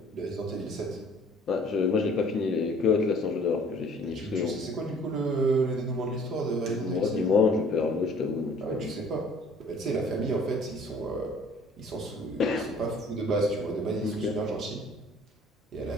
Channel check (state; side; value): normal; both; correlation 0.54